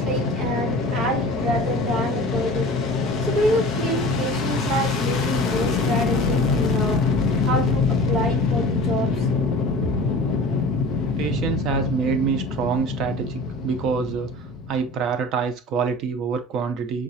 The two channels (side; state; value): both; normal; correlation 0.40